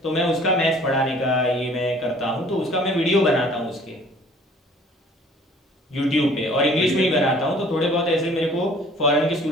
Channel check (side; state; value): both; normal; correlation 0.53